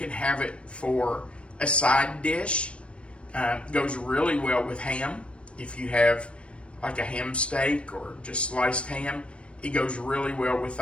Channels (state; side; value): late; right; 0.059 ms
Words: have it for a side dish. Goes really well with ham. If you have like a ham steak or just sliced ham, it goes really well with